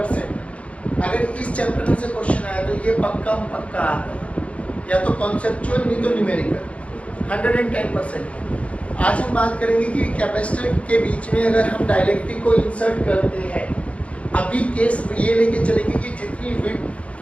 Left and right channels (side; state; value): right; late; 0.063 ms